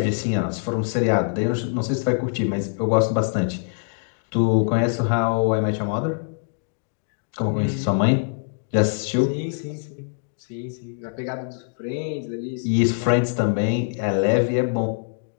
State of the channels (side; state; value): right; silent; digital silence